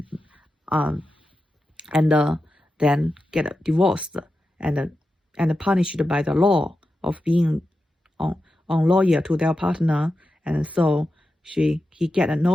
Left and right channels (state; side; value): normal; both; correlation 0.91